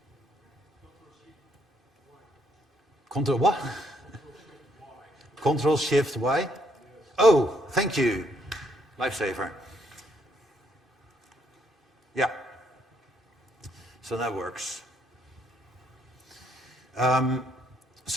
Control what? Control Shift Y? Oh, thank you. Lifesaver. Yeah. So that works.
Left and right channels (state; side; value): normal; both; correlation 0.71